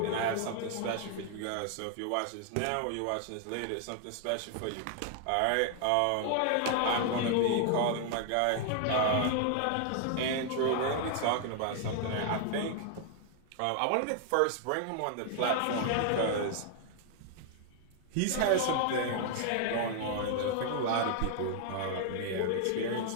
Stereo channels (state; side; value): different; both; correlation 0.00